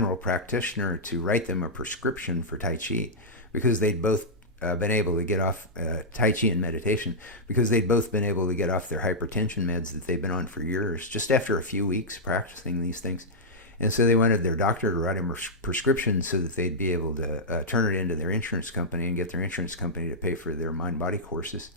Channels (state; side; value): normal; both; correlation -0.08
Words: practitioner to write them a prescription for Tai Chi, because they'd both been able to get off Tai Chi and meditation, because they'd both been able to get off their hypertension meds that they've been on for years, just after a few weeks practicing these things. And so they wanted their doctor to write them a prescription so that they'd be able to turn it into their insurance company and get their insurance company to pay for their mind-body courses.